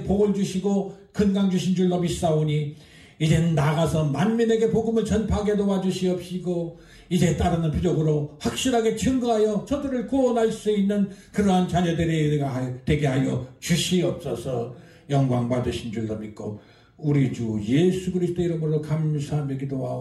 복을 주시고 건강 주신 줄로 믿사오니 이젠 나가서 만민에게 복음을 전파하게 도와주시옵시고 이제 따르는 표적으로 확실하게 증거하여 저들을 구원할 수 있는 그러한 자녀들이 되게 하여 주시옵소서. 영광 받으신 줄로 믿고 우리 주 예수 그리스도 이름으로 감사하며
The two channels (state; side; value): identical; both; correlation 1.00